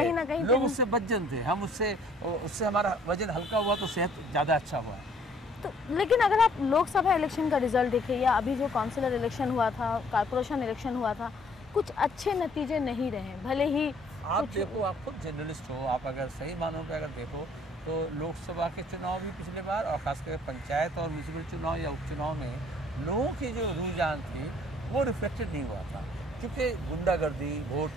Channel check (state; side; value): normal; both; correlation 0.60